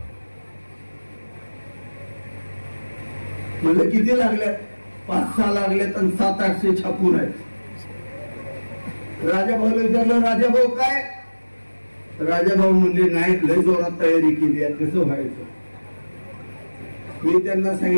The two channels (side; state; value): both; inverted; correlation -1.00